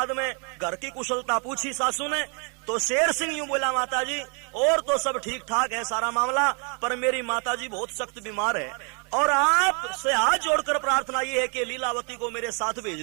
में घर की कुशलता पूछी सासू ने, तो शेर सिंह यूं बोला माताजी और तो सब ठीक ठाक है सारा मामला, पर मेरी माताजी बहुत सख्त बीमार है और आपसे हाथ जोड़कर प्रार्थना ये है कि लीलावती को मेरे साथ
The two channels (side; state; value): left; quieter; 37.1 dB